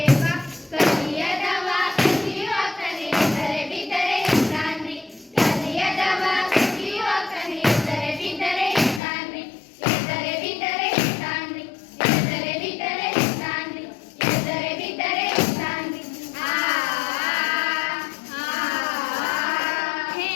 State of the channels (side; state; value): right; drops out; at 9.0 s